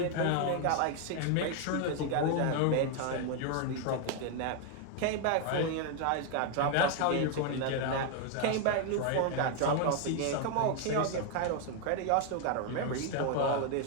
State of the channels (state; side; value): different; both; correlation 0.01